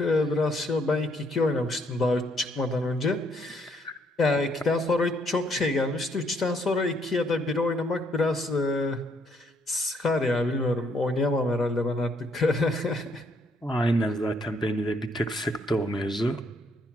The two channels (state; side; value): normal; both; correlation 0.70